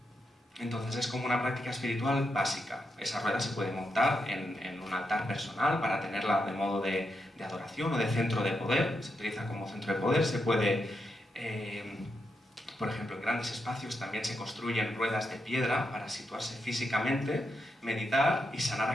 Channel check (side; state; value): both; normal; correlation 0.84